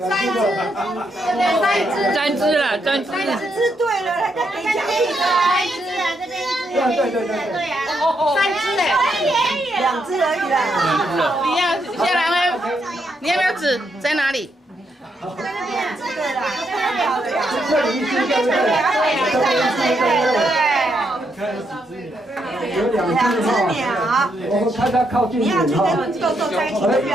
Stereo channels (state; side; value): normal; both; correlation 0.78